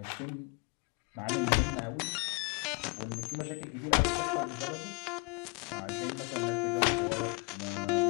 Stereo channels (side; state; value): right; quieter; 32.0 dB